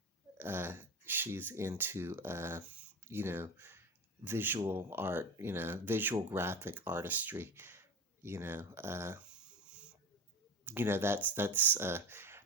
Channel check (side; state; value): both; normal; correlation 0.27